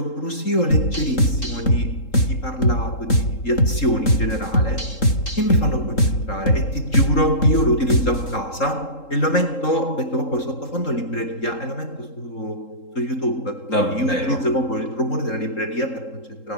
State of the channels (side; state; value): right; late; 3.7 ms